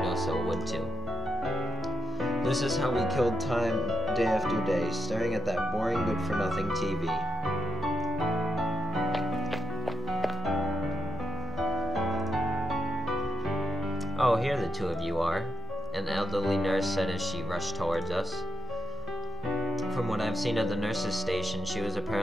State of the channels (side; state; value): both; normal; correlation 0.81